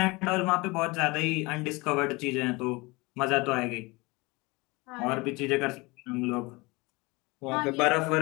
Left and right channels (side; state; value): right; quieter; 24.4 dB